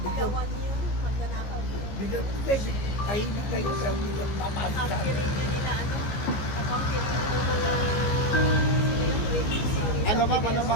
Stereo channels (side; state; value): right; late; 15 ms